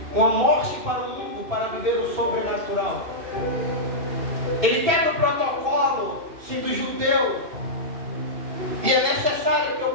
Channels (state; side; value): late; left; 2.7 ms